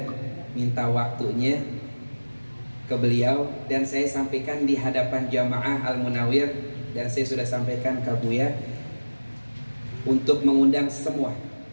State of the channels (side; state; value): both; inverted; correlation -1.00